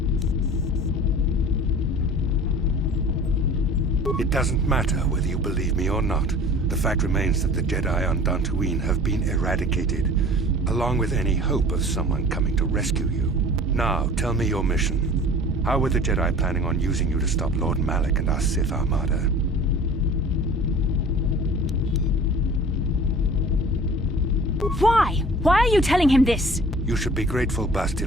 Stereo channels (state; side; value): normal; both; correlation 0.44